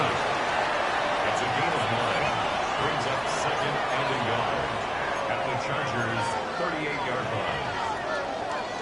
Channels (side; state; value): both; identical; correlation 1.00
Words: It's 28-yard line.